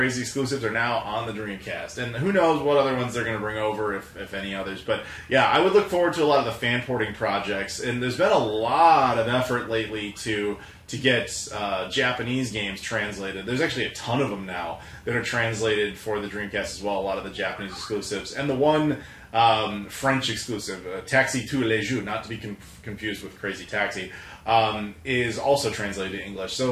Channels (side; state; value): both; identical; correlation 1.00